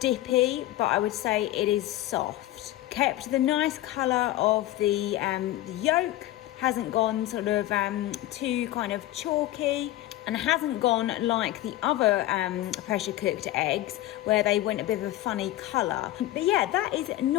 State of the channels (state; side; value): quieter; right; 15.1 dB